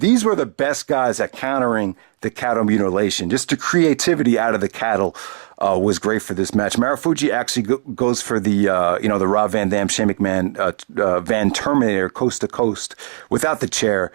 were the best guys at countering the cattle mutilation, just the creativity out of the cattle. was great for this match. Marufuji actually goes for the the Rob Van Dam, Shane McMahon, Van Terminator coast to coast without the chair,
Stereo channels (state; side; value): silent; left; 67 dB below the other